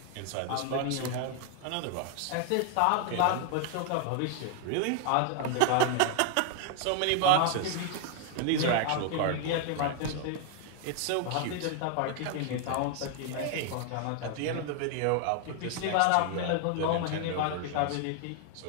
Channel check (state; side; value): different; both; correlation 0.00